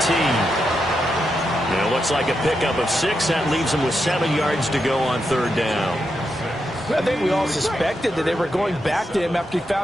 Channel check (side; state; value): both; normal; correlation 0.84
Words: And it looks like a pickup of 6. That leaves him with 7 yards to go on 3rd down. I think we all suspected that they were going back to him after he